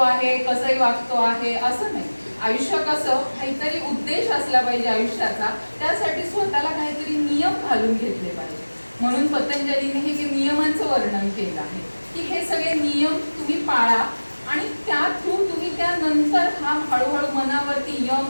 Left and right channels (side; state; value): both; inverted; correlation -1.00